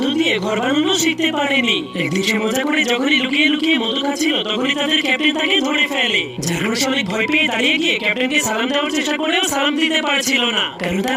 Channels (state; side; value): identical; both; correlation 1.00